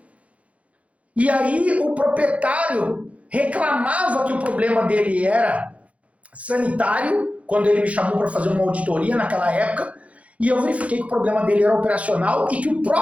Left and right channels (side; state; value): left; late; 0.065 ms